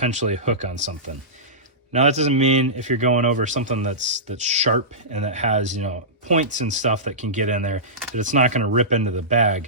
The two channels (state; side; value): normal; both; correlation -0.18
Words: hook on something. Now that doesn't mean if you're going over something that's sharp and that has, you know, points and stuff that can get in there, that it's not going to rip into the